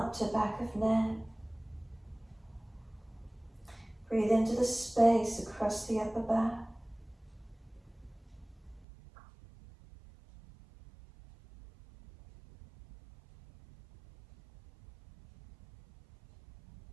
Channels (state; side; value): drops out; left; at 8.8 s